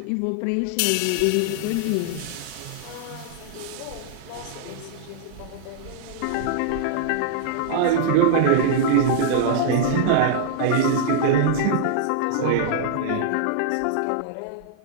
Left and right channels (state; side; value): different; both; correlation -0.01